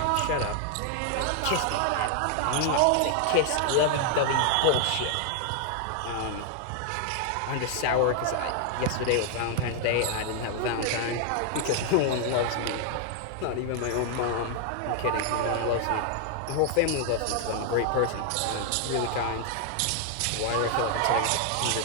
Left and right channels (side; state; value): both; different; correlation 0.00